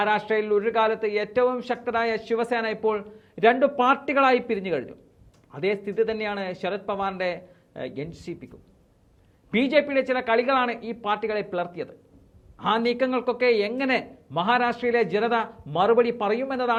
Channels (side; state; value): both; identical; correlation 1.00